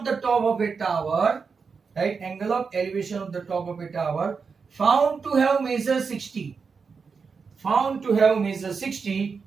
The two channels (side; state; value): left; quieter; 5.3 dB